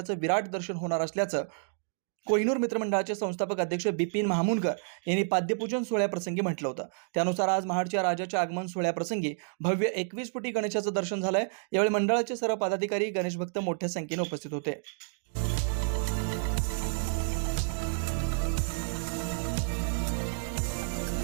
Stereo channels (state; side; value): silent; left; digital silence